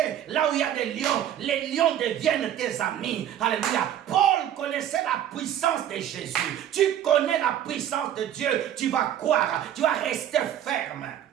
là où il y a des lions. Les lions deviennent tes amis. Alléluia. Paul connaissait la puissance de Jésus. Tu connais la puissance de Dieu. Tu vas croire. Tu vas rester ferme.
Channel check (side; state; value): left; quieter; 10.7 dB